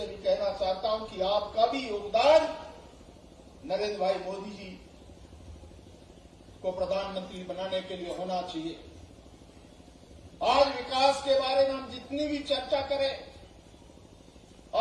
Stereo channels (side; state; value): both; identical; correlation 1.00